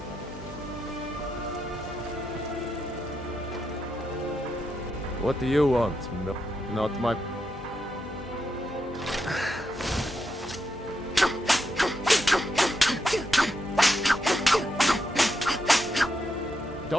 What do you want? Not my...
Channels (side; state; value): left; noise; hum, 17 dB below the sound